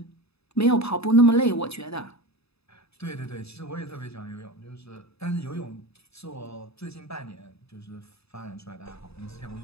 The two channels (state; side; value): late; right; 0.79 ms